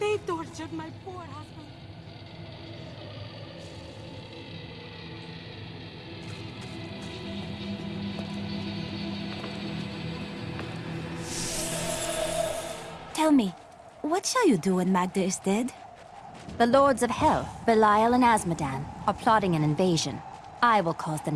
They tortured my poor husband. Tell me, what shall you do when Magda is dead? The Lords of Hell, Belial and Asmodan, are plotting an invasion. I will cause them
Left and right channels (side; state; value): both; identical; correlation 1.00